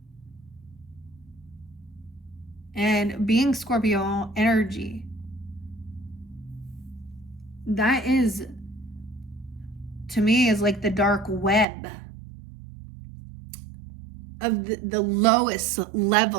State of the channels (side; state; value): left; drops out; at 11.7 s